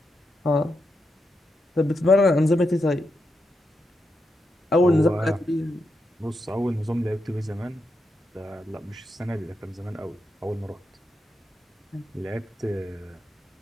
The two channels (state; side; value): normal; both; correlation 0.85